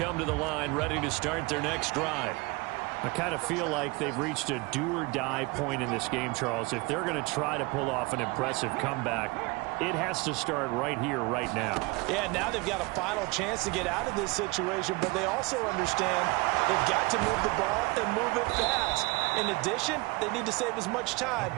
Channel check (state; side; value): quieter; left; 25.6 dB